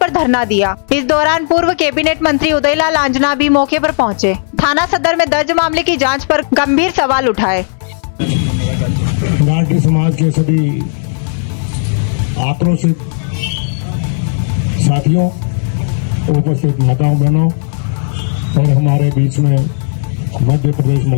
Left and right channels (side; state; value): right; silent; digital silence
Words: धरना दिया। इस दौरान पूर्व कैबिनेट मंत्री उदयलाल आंजना भी मौके पर पहुंचे। थाना सदर में दर्ज मामले की जांच पर गंभीर सवाल उठाए। गायरी समाज के सभी आक्रोशित साथियों, उपस्थित माताओं बहनों और हमारे बीच में मध्य प्रदेश